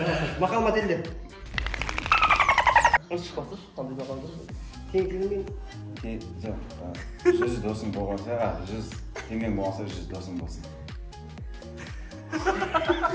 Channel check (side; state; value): both; identical; correlation 1.00